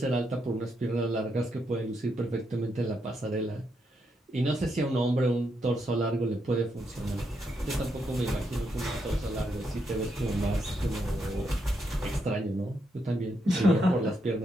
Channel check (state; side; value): normal; both; correlation 0.80